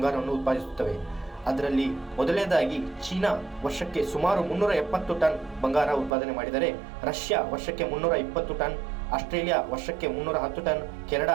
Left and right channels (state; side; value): drops out; left; at 6.2 s